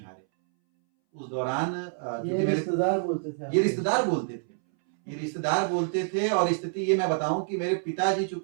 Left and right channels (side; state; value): left; silent; 60 dB below the other